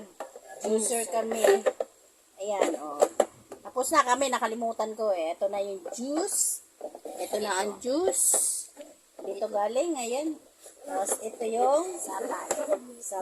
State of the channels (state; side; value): identical; both; correlation 1.00